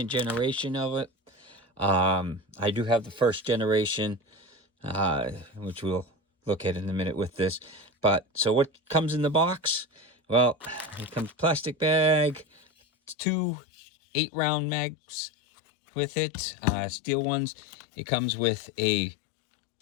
generation of it. I do have the first generation, which we'll look at in a minute with this. But so what comes in the box? Well, it comes plastic bag, 2 8-round mags with it, steel ones. It comes with a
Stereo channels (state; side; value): drops out; right; at 13.2 s